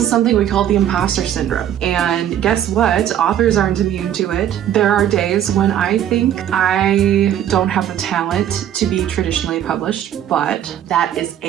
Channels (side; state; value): left; quieter; 10.6 dB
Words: something we call the imposter syndrome. And guess what? Authors aren't immune to it. There are days when I think I don't have the talent to be traditionally published, but that is